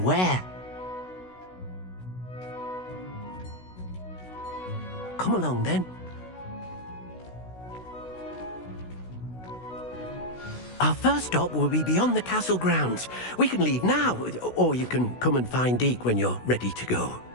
Come along, then. Our first stop will be beyond the castle grounds. We can leave now, or you can come and find Deke when you're ready to go.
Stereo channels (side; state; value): right; late; 16 ms